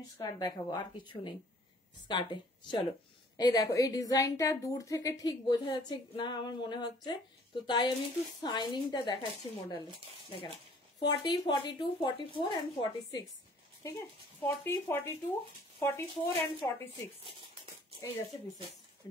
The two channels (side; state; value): both; normal; correlation 0.56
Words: স্কার্ট দেখাবো, আর কিছু নেই স্কার্টে। চলো এই দেখো, এই ডিজাইনটা দূর থেকে ঠিক বোঝা যাচ্ছে না আমার মনে হচ্ছে, তো তাই আমি একটু শাইনিংটা দেখাচ্ছি মডেলে। দেখে না, 40, 42, 44 एंड 46, ঠিক আছে? 40, 42, 44 एंड 46 এই যাচ্ছে পিসেস,